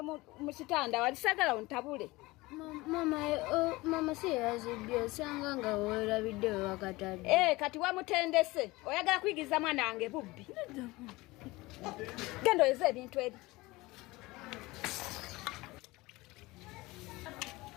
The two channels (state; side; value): quieter; right; 21.2 dB